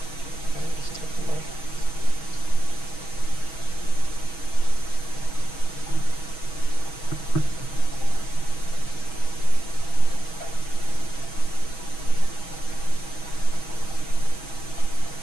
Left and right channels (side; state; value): right; late; 6.2 ms